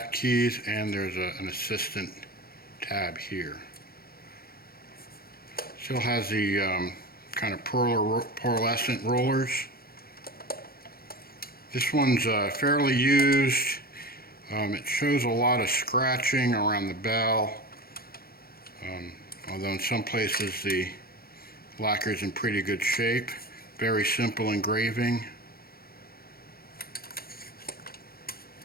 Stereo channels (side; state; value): right; late; 0.44 ms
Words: keys, and there's an assistant tab here. Still has the kind of pearlescent rollers. This one's fairly used. It shows a lot of scratching around the bell, although in some places the lacquer is in pretty good shape. Very simple engraving.